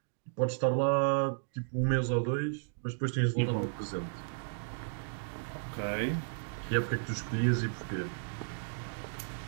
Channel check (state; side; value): silent; left; digital silence